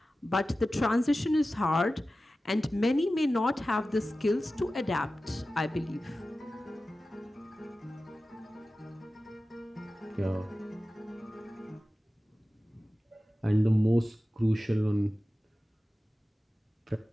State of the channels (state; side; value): normal; both; correlation 0.95